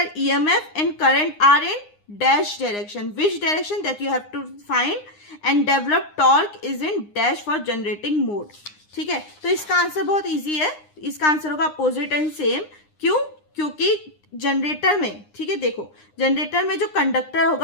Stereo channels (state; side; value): late; right; 9.7 ms